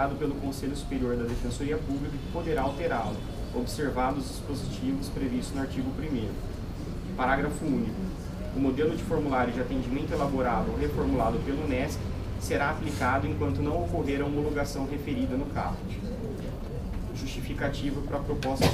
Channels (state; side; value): identical; both; correlation 1.00